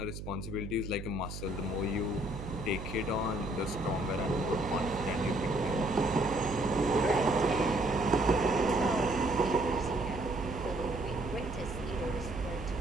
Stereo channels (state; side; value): noise; right; hum, 9 dB below the sound